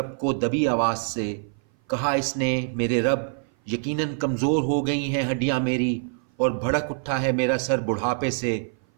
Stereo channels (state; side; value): silent; left; 57 dB below the other